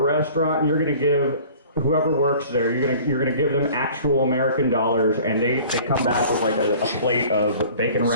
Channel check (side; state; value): both; inverted; correlation -0.47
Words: and you're gonna give whoever works there, you're gonna give them actual American dollars, and they come back with like a plate of bacon